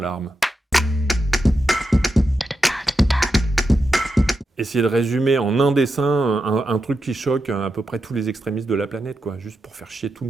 Essayer de résumer en un dessin un truc qui choque à peu près tous les extrémistes de la planète, quoi, juste pour faire chier tout le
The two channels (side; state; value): both; normal; correlation 0.87